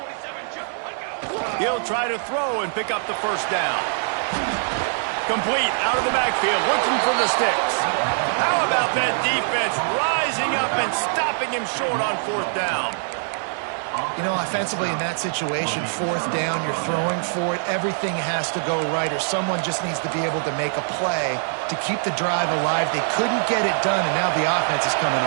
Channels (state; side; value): silent; left; digital silence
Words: He'll try to throw and pick up the first down. Complete out of the backfield, looking for the sticks. How about that defense rising up and stopping him short on 4th down? You know, offensively in that situation, 4th down, you're throwing for it. Everything has to go right, or someone just needs to be able to make a play to keep the drive alive. They couldn't get it done, and now the offense is coming